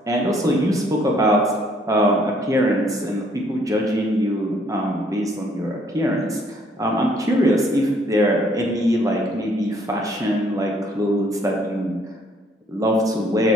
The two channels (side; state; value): both; normal; correlation 0.64